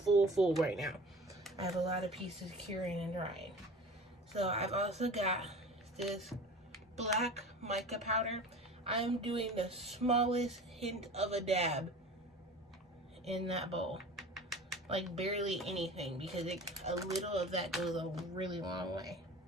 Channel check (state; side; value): normal; both; correlation 0.39